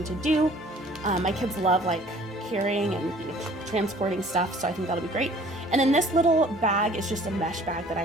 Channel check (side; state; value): both; normal; correlation 0.53